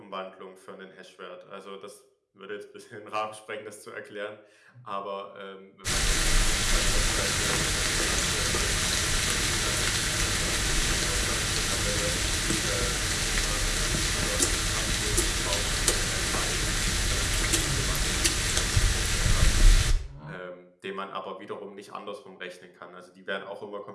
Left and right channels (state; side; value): identical; both; correlation 1.00